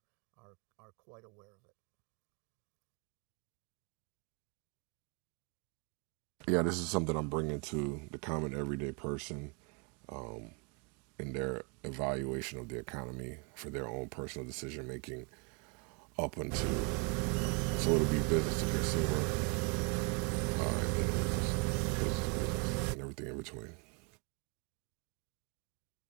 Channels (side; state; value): left; quieter; 32.3 dB